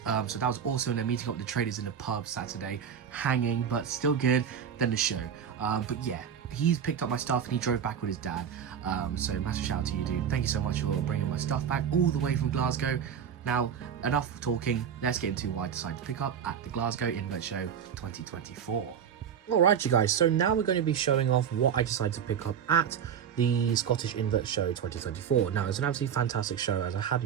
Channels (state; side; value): quieter; left; 8.1 dB